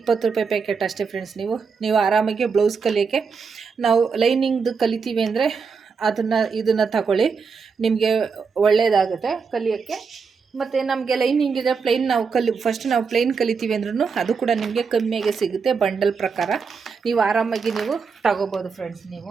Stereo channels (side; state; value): left; quieter; 5.4 dB